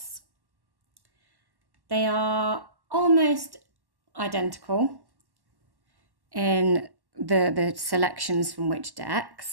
They are almost identical in the selections from which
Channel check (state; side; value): late; left; 1.1 ms